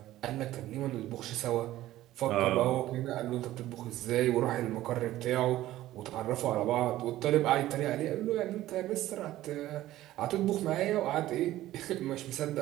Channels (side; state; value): left; quieter; 14.9 dB